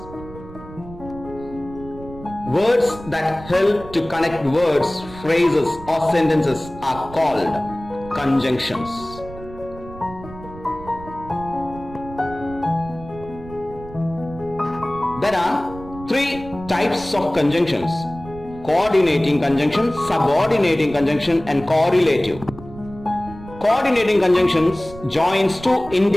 Words that help to connect words, phrases, or sentences are called conjunctions. There are three types of conjunctions: coordinating conjunction, subordinating conjunction, and correlative. Coordinating conjunctions joins two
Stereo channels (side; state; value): right; noise; rumble, 16 dB below the sound